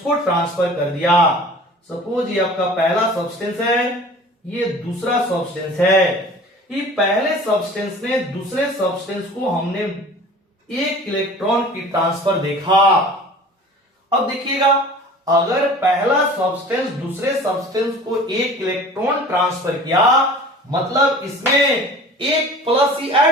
को ट्रांसफर कर दिया। सपोज ये आपका पहला सब्सटेंस है, ये दूसरा सब्सटेंस है, ये पहले सब्सटेंस ने दूसरे सब्सटेंस को हमने एक इलेक्ट्रॉन की ट्रांसफर देखा। अब देखिएगा, अगर पहला सब्सटेंस दूसरे सब्सटेंस को एक इलेक्ट्रॉन ट्रांसफर किया, मतलब इसमें एक प्लस ही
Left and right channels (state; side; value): normal; both; correlation 0.43